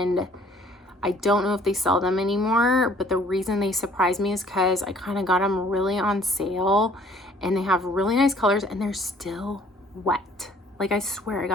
I don't know if they sell them anymore, but the reason they surprised me is because I kind of got them really on sale, and they have really nice colors, and they're still wet. Like, I swear I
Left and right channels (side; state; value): both; normal; correlation 0.57